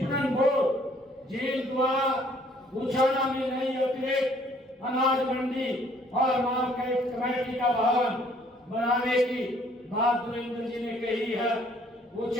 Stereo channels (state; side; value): normal; both; correlation 0.61